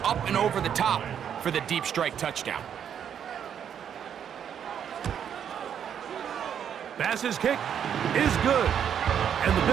up and over the top for the deep strike touchdown. Bass's kick is good. And the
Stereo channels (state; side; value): quieter; left; 8.6 dB